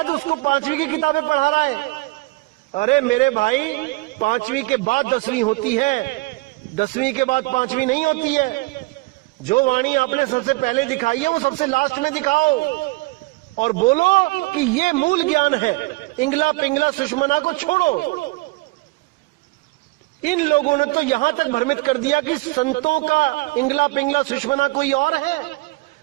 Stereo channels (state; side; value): quieter; left; 23.1 dB